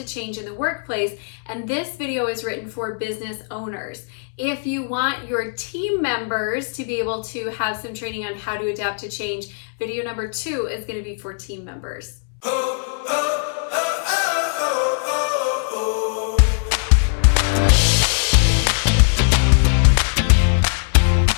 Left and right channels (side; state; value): right; silent; 65 dB below the other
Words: change in the workplace, and this video is written for business owners. If you want your team members to be able to have some training on how to adapt to change, video number 2 is going to be for team members.